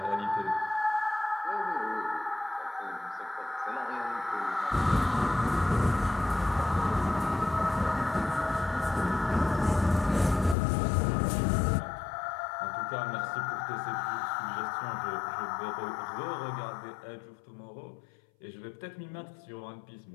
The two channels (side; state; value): right; drops out; at 10.6 s